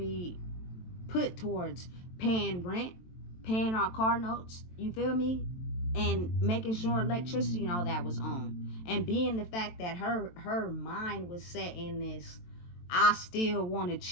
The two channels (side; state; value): right; late; 23 ms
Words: put towards paying rent, paying our car notes, you feel me, and making sure electricity and all that was on. And being the fact that her mind was set in this, I still want to